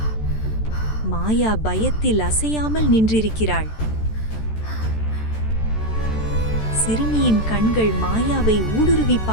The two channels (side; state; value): right; late; 14 ms